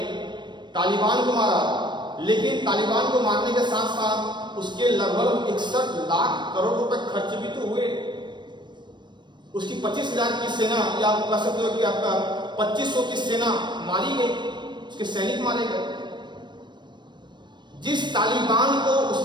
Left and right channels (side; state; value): left; late; 0.22 ms